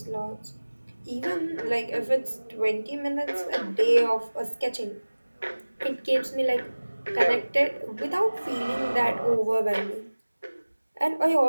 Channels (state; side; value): inverted; both; correlation -1.00